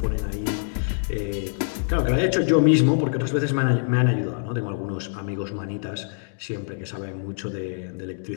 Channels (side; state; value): right; silent; digital silence